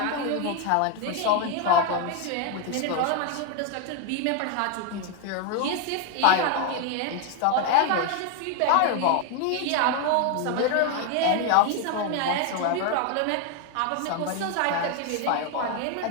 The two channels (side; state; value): both; different; correlation 0.01